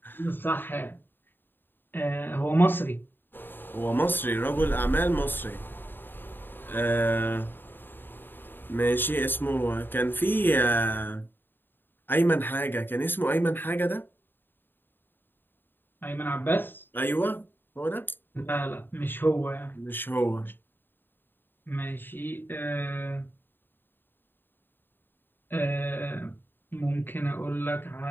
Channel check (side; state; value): right; late; 0.096 ms